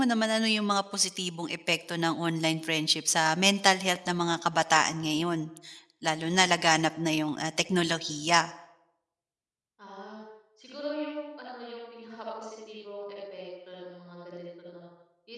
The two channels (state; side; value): identical; both; correlation 1.00